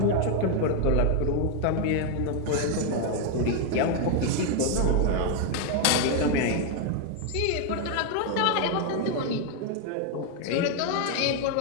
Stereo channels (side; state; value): both; different; correlation 0.01